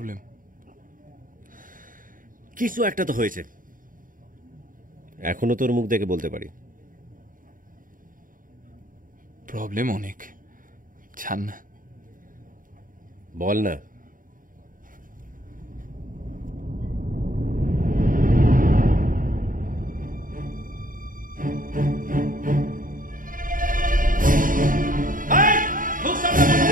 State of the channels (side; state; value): left; late; 0.40 ms